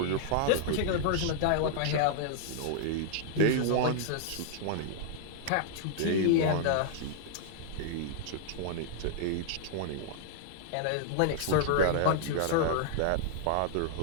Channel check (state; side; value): different; both; correlation -0.01